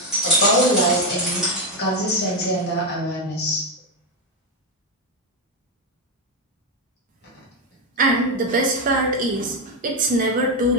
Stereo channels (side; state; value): both; normal; correlation 0.06